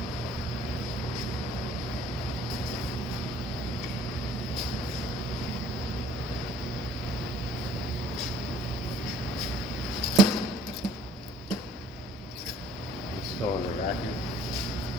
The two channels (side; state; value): both; normal; correlation 0.57